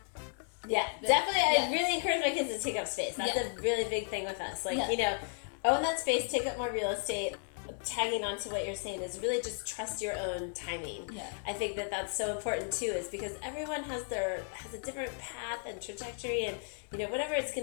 Yeah, definitely. I really encourage my kids to take up space. That's a really big thing with us. Like, own that space, take up more real estate. Tagging on to what you're saying is really just trust your own timing. Yeah. I think that that's so important too, is because everyone has a different path and trajectory, and whatever it's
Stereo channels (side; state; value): right; silent; 55 dB below the other